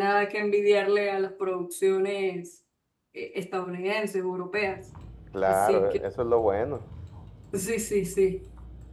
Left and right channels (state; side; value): identical; both; correlation 1.00